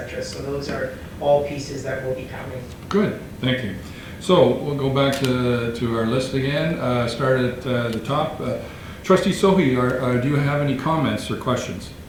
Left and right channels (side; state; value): both; identical; correlation 1.00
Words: So those are all pieces that will be coming. Good, thank you. So we'll go back to our list again, start at the top. Trustee Sohi, do you have any comments or questions?